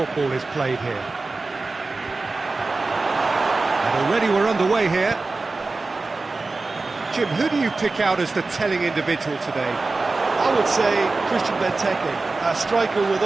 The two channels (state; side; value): quieter; left; 3.6 dB